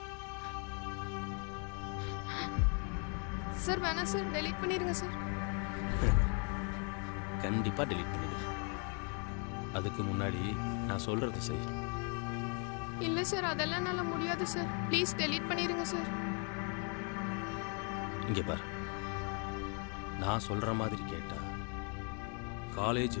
சார் வேணாம் சார், டெலீட் பண்ணிடுங்க சார். கண்டிப்பாக டெலீட் பண்ணிடு. அதுக்கு முன்னாடி நான் சொல்கிறது செய். இல்லை சார், அதெல்லாம் என்னால் முடியாது சார். ப்ளீஸ் டெலீட் பண்ணிடுங்க சார். இங்கே பார், நான் சொல்கிற மாதிரி கேட்டா காலேஜ்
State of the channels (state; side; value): quieter; right; 38.6 dB